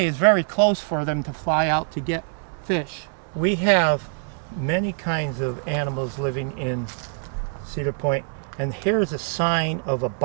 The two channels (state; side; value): silent; left; 62 dB below the other